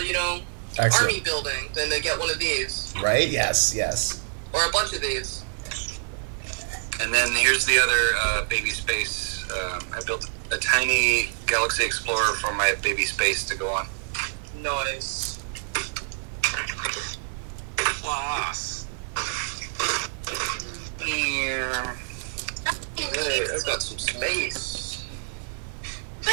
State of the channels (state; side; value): silent; left; 61 dB below the other